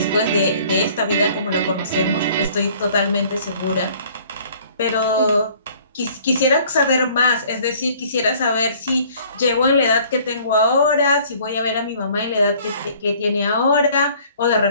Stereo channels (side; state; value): both; inverted; correlation -0.55